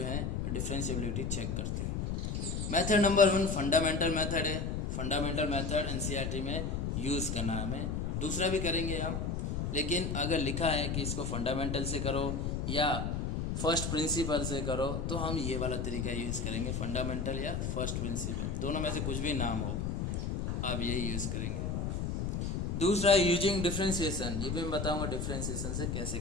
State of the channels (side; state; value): left; noise; rumble, 1 dB below the sound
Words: है डिफरेंशिएबिलिटी चेक करते हैं। मेथड नंबर 1 फंडामेंटल मेथड है। फंडामेंटल मेथड एनसीईआरटी में यूज़ करना है हमें, दूसरा भी करेंगे हम, लेकिन अगर लिखा है कि इसको फंडामेंटल से करो या फर्स्ट प्रिंसिपल से करो तो हम ये वाला तरीका यूज़ करेंगे, फंडामेंटल या फर्स्ट प्रिंसिपल, दोनों में से कुछ भी नाम हो आप यही यूज़ करेंगे। दूसरा यूजिंग डिफरेंशिएशन, ये भी मैं बताऊंगा डिफरेंशिएशन से कैसे